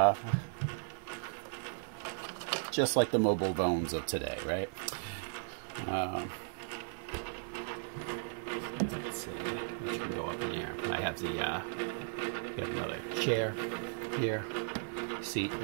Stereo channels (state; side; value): silent; left; 54 dB below the other